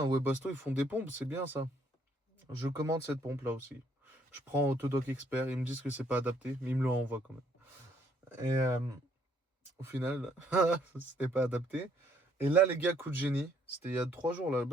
Webasto, ils font des pompes, c'est bien ça. Je commande cette pompe-là aussi. Je prends Autodoc Expert, ils me disent que c'est pas adapté, mais ils me l'envoient quand même. Et au final, c'était pas adapté. Et là, les gars, coup de génie, c'était il y a 3 jours là.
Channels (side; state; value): both; normal; correlation 0.67